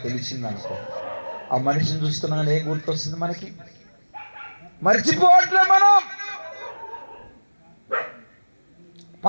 తెలిసిందనుకో, ఆ మనిషిని చూస్తున్నాగానే ఏం గుర్తొస్తుంది మనకి? మర్చిపోవట్లే మనం.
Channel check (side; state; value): both; inverted; correlation -1.00